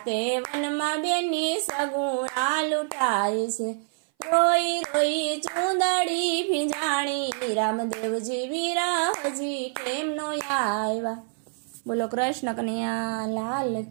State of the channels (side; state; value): left; silent; 58 dB below the other